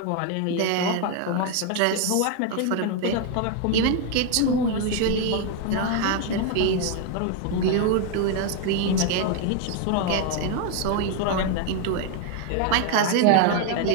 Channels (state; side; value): different; both; correlation 0.01